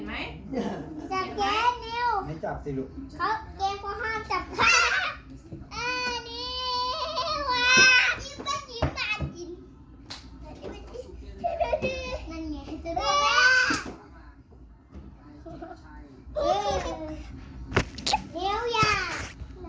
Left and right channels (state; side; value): identical; both; correlation 1.00